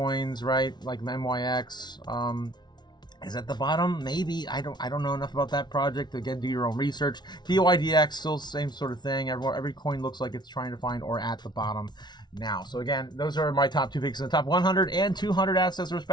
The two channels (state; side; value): late; right; 0.20 ms